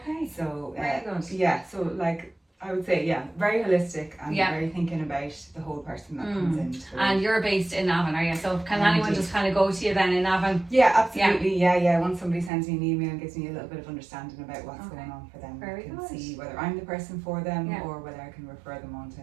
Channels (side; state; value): left; drops out; at 12.5 s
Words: So very good. Yeah, so like I would say, very holistic and very thinking about the whole person that comes in. And you're based in Navan, are you? So can anyone just kind of go to you then in Navan? Yeah, absolutely. Yeah. Once somebody sends me an email and gives me a little bit of understanding about what's going on for them, I can see whether I'm the person for them or whether I can refer them on to